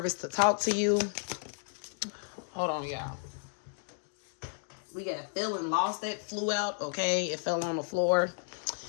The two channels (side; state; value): right; silent; digital silence